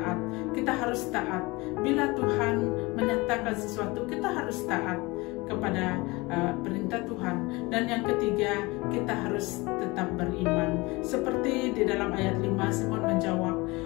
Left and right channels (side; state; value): right; quieter; 23.6 dB